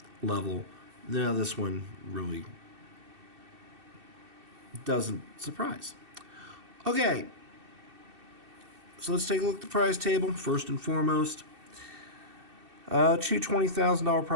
level, now this one really doesn't surprise. Okay, so let's take a look at the prize table first and foremost. 2 $20,000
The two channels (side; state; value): left; late; 2.6 ms